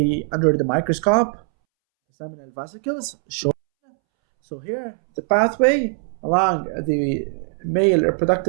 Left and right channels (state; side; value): silent; left; 65 dB below the other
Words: under the microscope. The seminal vesicles shown. So here, the pathway along the male